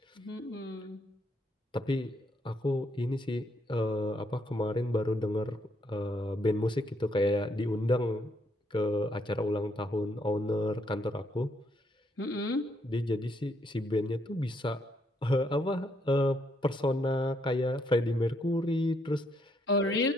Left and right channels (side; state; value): both; normal; correlation 0.73